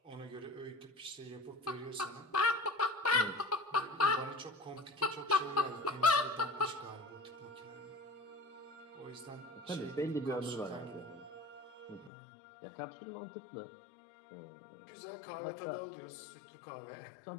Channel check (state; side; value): drops out; right; at 12.1 s